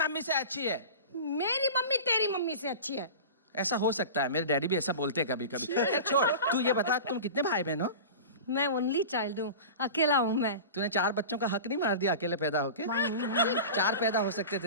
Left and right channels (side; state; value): both; inverted; correlation -0.33